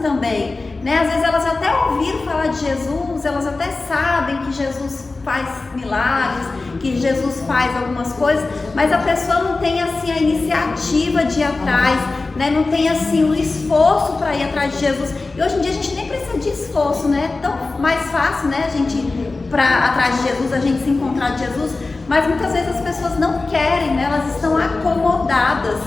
né? Às vezes elas até ouviram falar de Jesus, elas até sabem que Jesus faz milagres, que Jesus faz algumas coisas, mas a pessoa não tem assim a iniciativa de ir atrás, né? Não tem assim o esforço para ir atrás de Jesus. E hoje em dia a gente nem precisa de esforço, né? É tão mais fácil, né? A gente ir atrás de Jesus, a gente se encontrar de Jesus, mas muitas vezes as pessoas não querem, né? Elas estão acomodadas,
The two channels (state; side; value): quieter; right; 3.6 dB